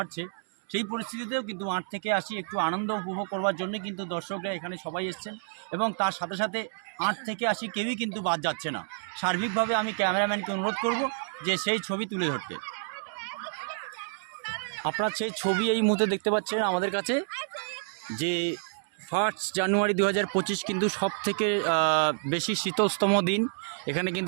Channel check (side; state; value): left; silent; digital silence